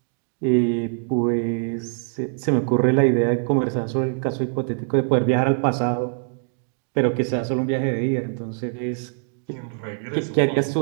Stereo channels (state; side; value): silent; left; 62 dB below the other